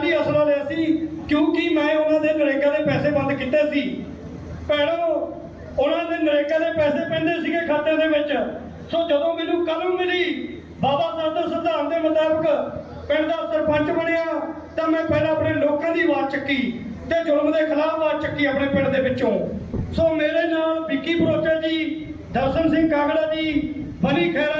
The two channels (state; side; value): identical; both; correlation 1.00